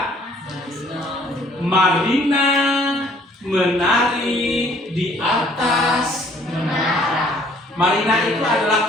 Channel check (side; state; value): both; normal; correlation 0.59